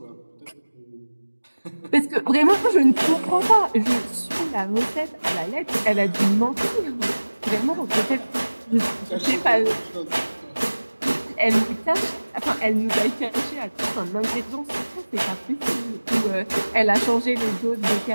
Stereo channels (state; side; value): inverted; both; correlation -1.00